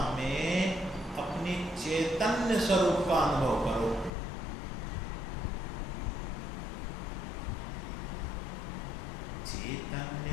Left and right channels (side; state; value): right; drops out; at 4.1 s